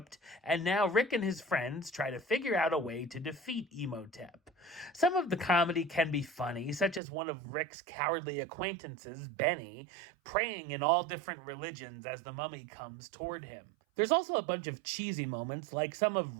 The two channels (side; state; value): left; drops out; at 7.0 s